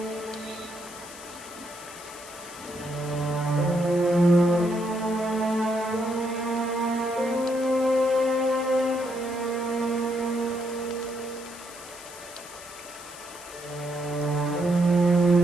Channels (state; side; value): noise; left; hiss, 16 dB below the sound